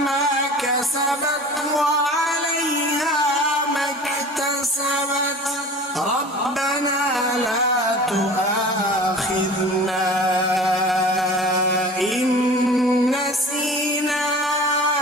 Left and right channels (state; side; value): normal; both; correlation 0.40